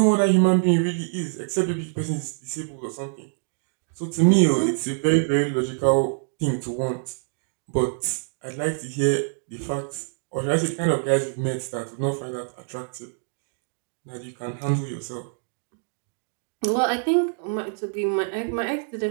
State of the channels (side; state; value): left; silent; digital silence